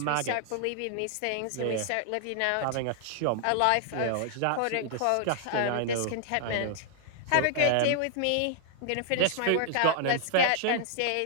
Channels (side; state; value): both; different; correlation -0.01